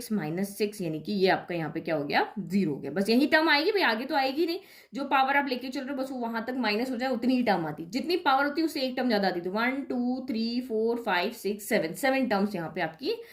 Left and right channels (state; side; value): identical; both; correlation 1.00